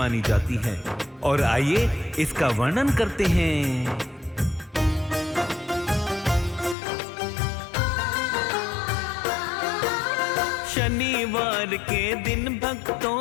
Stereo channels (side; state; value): right; drops out; at 6.8 s